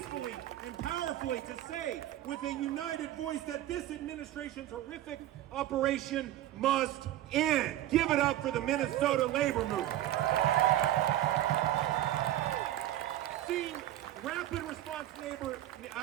and powerfully to say with a united voice that this administration's horrific operation must end. Give it up for the Minnesota labor movement. Rapid response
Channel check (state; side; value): quieter; left; 13.5 dB